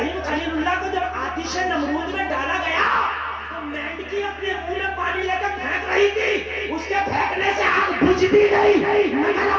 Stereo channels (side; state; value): both; identical; correlation 1.00